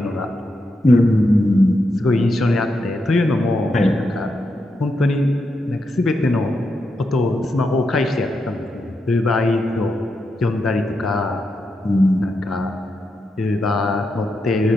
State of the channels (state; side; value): normal; both; correlation 0.85